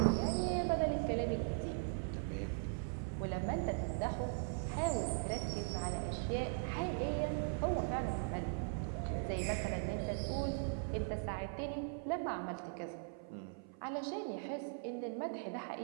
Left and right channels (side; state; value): left; silent; 51 dB below the other